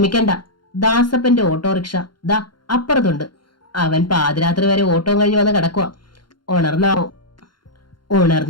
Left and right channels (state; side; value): late; right; 0.72 ms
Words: ദാസപ്പന്റെ ഓട്ടോറിക്ഷ ദാ അപ്പുറത്തുണ്ട്. അവൻ പാതിരാത്രി വരെ ഓട്ടം കഴിഞ്ഞ് വന്ന് കിടക്കുക. ഉണർന്നാവോ?